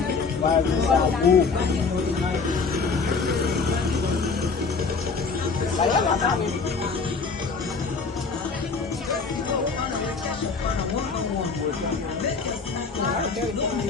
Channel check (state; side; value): quieter; right; 4.7 dB